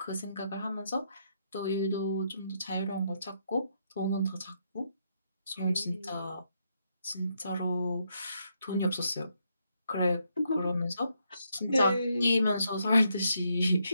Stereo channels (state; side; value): inverted; both; correlation -0.77